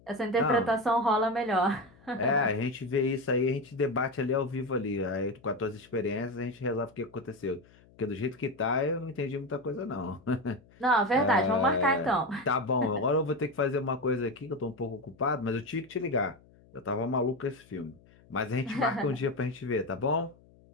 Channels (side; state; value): left; noise; hum, 27 dB below the sound